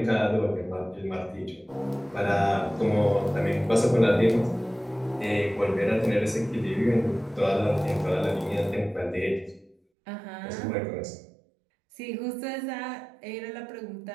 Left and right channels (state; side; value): drops out; left; at 9.8 s